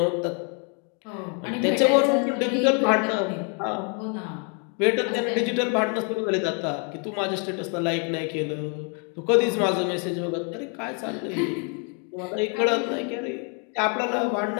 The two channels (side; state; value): right; quieter; 38.5 dB